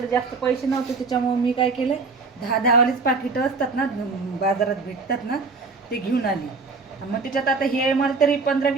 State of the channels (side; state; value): left; quieter; 4.2 dB